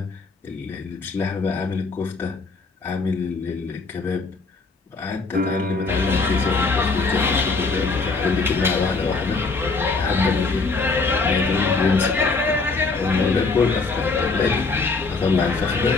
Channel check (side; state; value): right; quieter; 4.1 dB